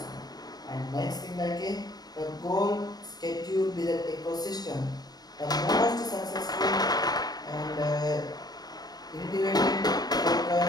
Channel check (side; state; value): right; late; 0.19 ms